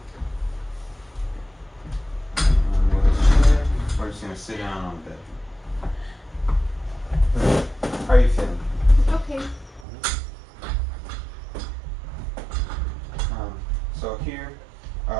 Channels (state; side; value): drops out; left; at 9.9 s